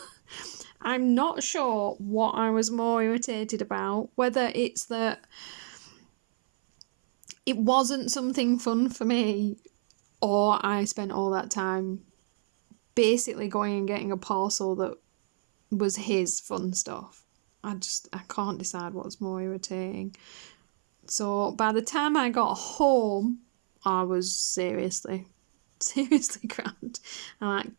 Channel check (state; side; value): silent; left; 58 dB below the other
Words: I'm not sure what I was more irritated about, whether it's that it wasn't something fun for me, or I spent all that time basically going and getting a parcel that was his fun stuff. I can't decide what's more irritating. So by the time I got home, I was seriously crammed. And I